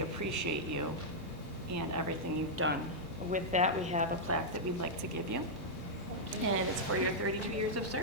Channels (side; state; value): both; normal; correlation -0.07